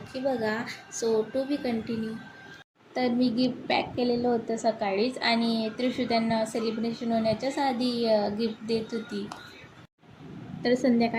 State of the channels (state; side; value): identical; both; correlation 1.00